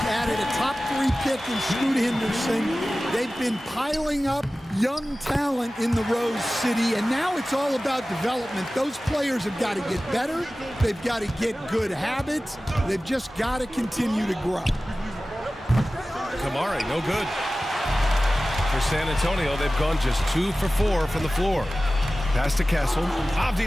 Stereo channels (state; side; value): normal; both; correlation 0.96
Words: added a top 3 pick in Scoot Henderson. They've been piling up young talent in the Rose City, and now it's all about development. Those players have got to get better. They've got to get good habits. They've just got to continue to grow. Kamare, no good. For San Antonio, they've gone just 2 for 4 from the floor. Pass to Castle.